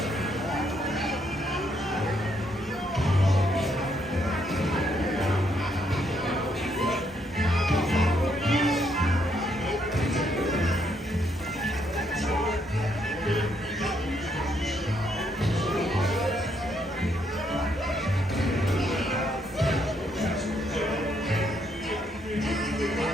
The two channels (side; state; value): both; normal; correlation 0.73